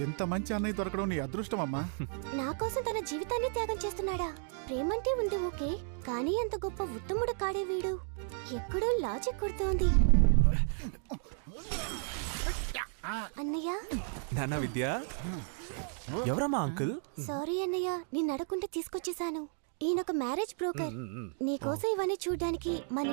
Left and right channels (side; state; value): left; silent; 56 dB below the other